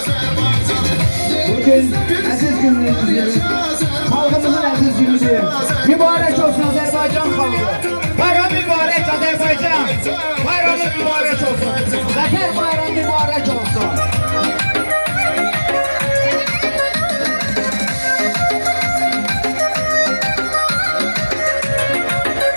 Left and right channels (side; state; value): both; inverted; correlation -1.00